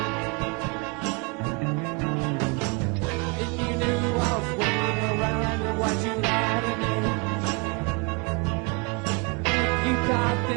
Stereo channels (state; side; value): quieter; left; 30.9 dB